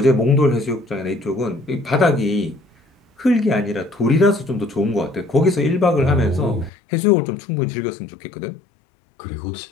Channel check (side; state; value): right; drops out; at 6.7 s